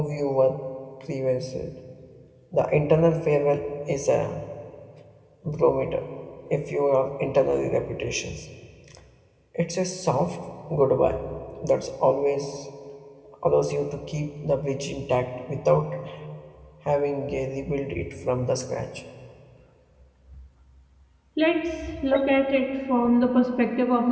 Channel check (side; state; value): both; identical; correlation 1.00